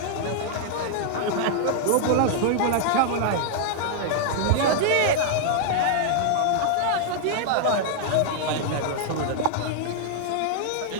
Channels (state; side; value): different; both; correlation -0.01